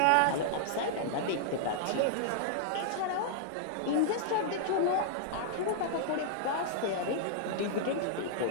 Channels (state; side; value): different; both; correlation -0.01